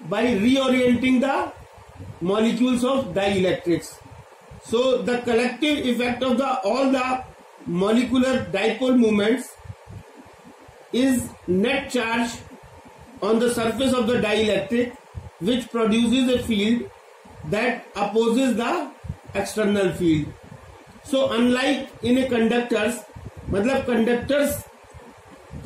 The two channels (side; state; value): both; identical; correlation 1.00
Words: by reorienting the molecules of dielectrics. So the collective effect of all the molecular dipole moments is net charge on the surface of the dielectric, which produces a field that opposes the external field. So unlike in a conductors, मतलब conductors